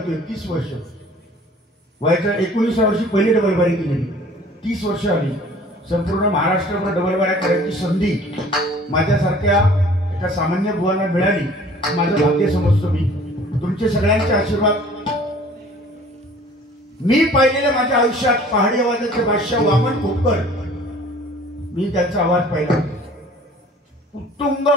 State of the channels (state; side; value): normal; both; correlation 0.51